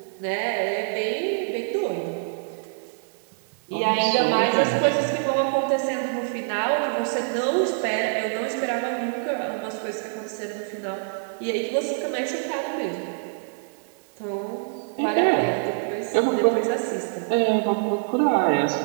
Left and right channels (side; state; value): left; silent; digital silence